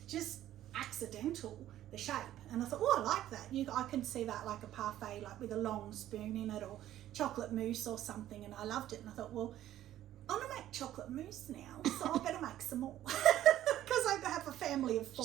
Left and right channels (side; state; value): left; quieter; 12.8 dB